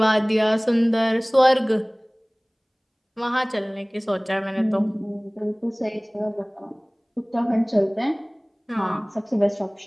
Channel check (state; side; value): identical; both; correlation 1.00